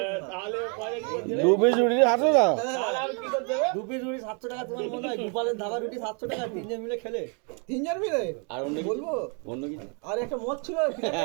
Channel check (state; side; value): quieter; left; 37.2 dB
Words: তাহলে দু পিস রুটি 700 টাকা। তাহলে আমি কি করতে হবে? 2 পিস রুটি 700 টাকা তোমার মনে হয় গোপালের ধাবা রুটি 700 টাকা তিনজন মিলে খেলে তিনজন মিলে আর অন্য কিছু? বলবো অন্য কিছু আর একটা মদ ছিল